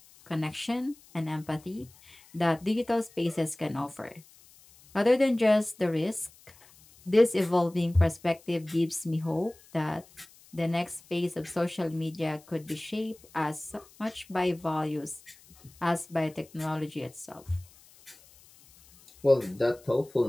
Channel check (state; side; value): noise; left; hiss, 25 dB below the sound